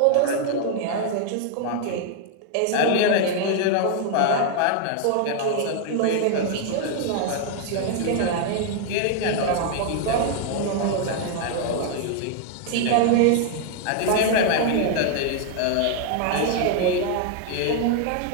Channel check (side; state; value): both; different; correlation 0.00